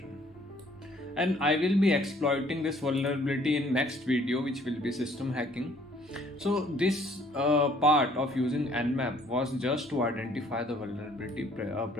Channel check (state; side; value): normal; both; correlation 0.60